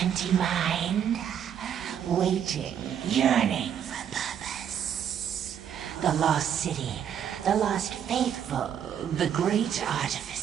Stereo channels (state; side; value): quieter; left; 8.9 dB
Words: empty mind. Waiting, yearning for purpose. The lost city, the lost faithful, the great